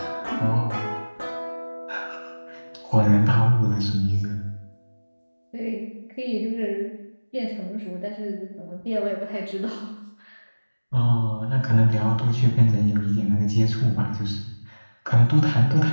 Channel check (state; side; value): inverted; both; correlation -1.00